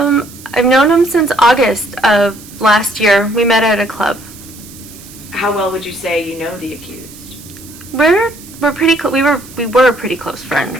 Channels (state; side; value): noise; right; hiss, 19 dB below the sound